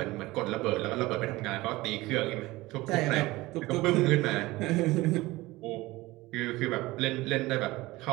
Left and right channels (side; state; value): left; quieter; 19.8 dB